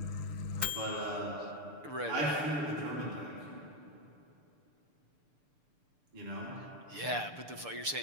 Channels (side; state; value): left; late; 6.8 ms